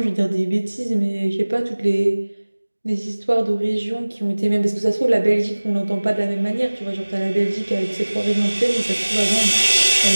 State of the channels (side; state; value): both; inverted; correlation -1.00